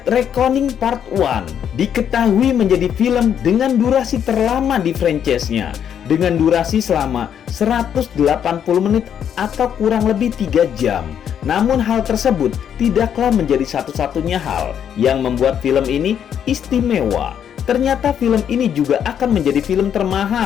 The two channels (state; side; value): quieter; right; 8.8 dB